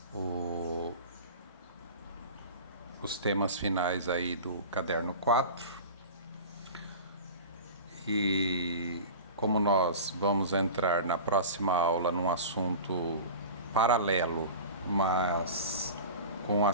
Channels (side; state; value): both; inverted; correlation -0.35